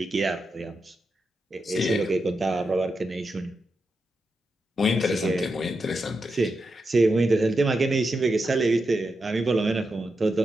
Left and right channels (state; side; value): normal; both; correlation 0.87